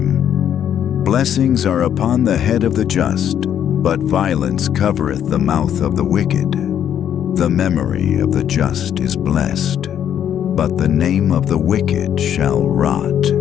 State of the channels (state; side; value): quieter; right; 9.6 dB